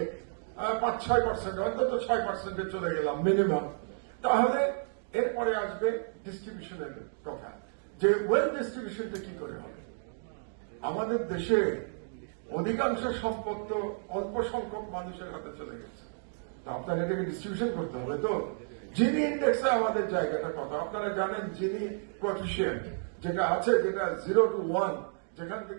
5-6%, অন্তত 6% চলে গেলাম মিনিমাম, তাহলে এরপরে আসবে ডিস্ট্রিবিউশনের কথা, যে ওয়েলথ ডিস্ট্রিবিউশনটা কি করে হবে। আমাদের দেশে অধিকাংশ সম্পদ তো অল্প সংখ্যক মানুষের হাতে চলে গেছে, তো আপনার এটাকে ডিস্ট্রিবিউশন করতে হবে। তো জিনি ইন্ডেক্সে আমাদের জায়গাটা কত আপনারা জানেন। জিনি কোএফিসিয়েন্ট যেটা আছে, যেটা 0 to 1, যেখান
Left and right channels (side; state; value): left; silent; digital silence